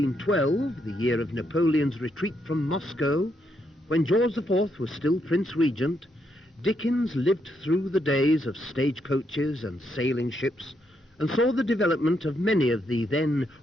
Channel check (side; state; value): both; normal; correlation 0.78